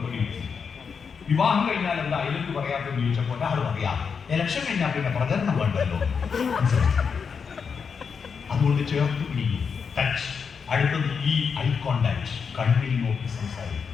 കിട്ടി. വിവാഹം കഴിഞ്ഞാൽ എന്താ ഐലക്യു പറയാത്തെന്ന് ചോദിച്ചപ്പോൾ ഒരാൾ പറയാം, ഇലക്ഷൻ കഴിഞ്ഞാൽ പിന്നെ പ്രചരണം വേണ്ടല്ലോ. അതുകൊണ്ട് ചേർത്ത് പിടിക്കും. ടച്ച്. അടുത്തത് ഈ ഐ കോണ്ടാക്ട്, കണ്ണിൽ നോക്കി സംസാരിക്കും.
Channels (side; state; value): right; quieter; 6.1 dB